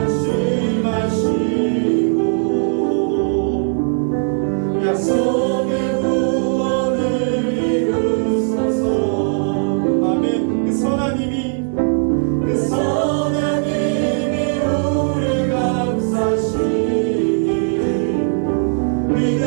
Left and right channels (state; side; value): silent; left; digital silence